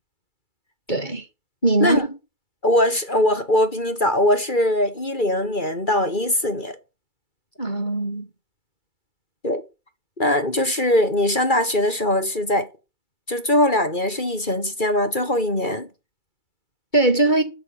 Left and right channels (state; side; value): late; right; 2.3 ms